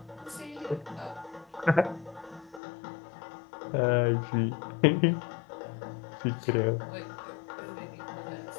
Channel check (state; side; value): drops out; right; at 2.6 s